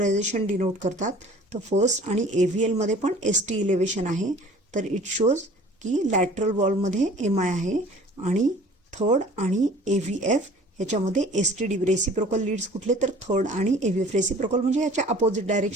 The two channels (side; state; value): both; normal; correlation 0.48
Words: डिनोट करतात. तर फर्स्ट आणि AVL मध्ये पण ST इलेव्हेशन आहे. तर इट शोज की लॅटरल वॉलमध्ये एम आय आहे आणि थर्ड आणि AVF ह्याच्यामध्ये ST रेसिप्रोकल लीड्स कुठले तर थर्ड आणि AVF. रेसिप्रोकल म्हणजे ह्याच्या अपोजिट